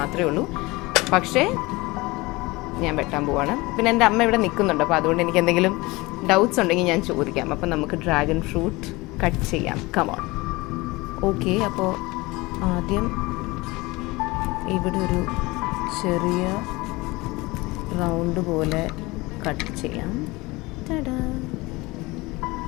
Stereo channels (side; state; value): right; quieter; 22.5 dB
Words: ഉള്ളൂ. പക്ഷേ ഞാൻ വെട്ടാൻ പോവാണ്. പിന്നെ എൻ്റെ അമ്മ ഇവിടെ നിൽക്കുന്നുണ്ട്, അപ്പോൾ അതുകൊണ്ട് എനിക്ക് എന്തെങ്കിലും ഡൗട്ട്സ് ഉണ്ടെങ്കിൽ ഞാൻ ചോദിക്കാം. അപ്പം നമുക്ക് ഡ്രാഗൺ ഫ്രൂട്ട് കട്ട് ചെയ്യാം. കമോൺ. ഓക്കെ, അപ്പോൾ ആദ്യം ഇവിടെ ഒരു ചെറിയ റൗണ്ട് പോലെ കട്ട് ചെയ്യാം.